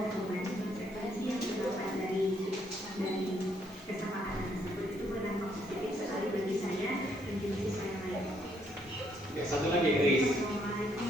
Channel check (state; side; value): noise; left; hiss, 27 dB below the sound